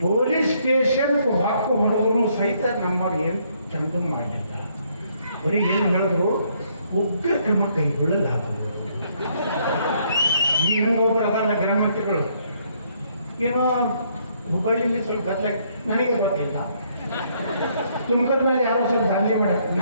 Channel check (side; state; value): both; inverted; correlation -0.69